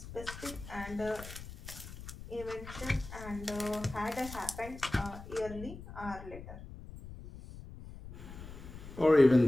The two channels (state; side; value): noise; left; rumble, 13 dB below the sound